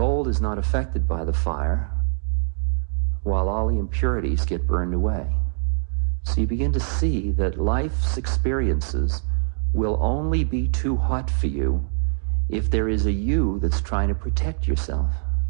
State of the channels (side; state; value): left; silent; digital silence